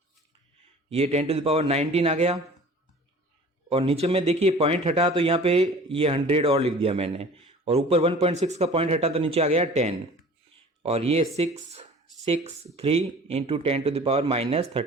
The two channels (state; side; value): normal; both; correlation 0.45